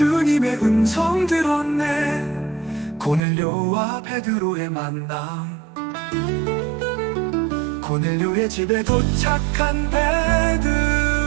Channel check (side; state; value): left; drops out; at 3.2 s